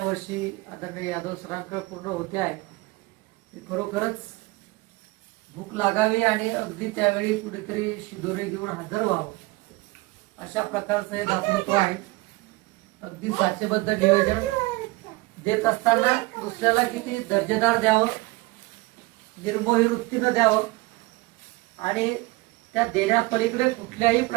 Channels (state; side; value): quieter; left; 22.4 dB